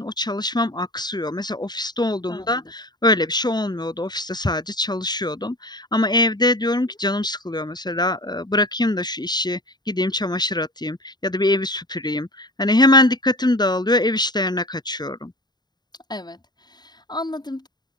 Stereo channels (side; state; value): right; late; 0.20 ms